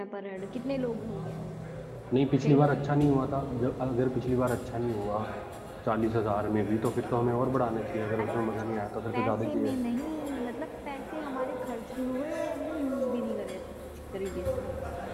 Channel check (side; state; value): both; identical; correlation 1.00